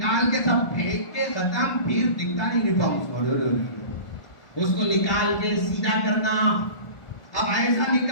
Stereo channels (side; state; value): right; late; 1.4 ms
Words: کے سب پھینک کے ختم، پھر دکھتا نہیں یونیفارم. اس کو نکال کے سیدھا کرنا. اب ایسا